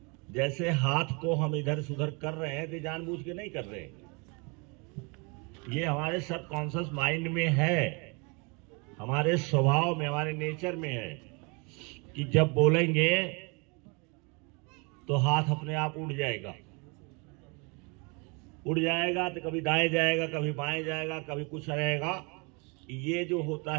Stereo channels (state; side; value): quieter; left; 31.3 dB